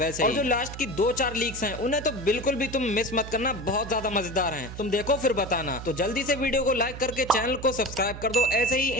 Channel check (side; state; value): right; noise; hum, 11 dB below the sound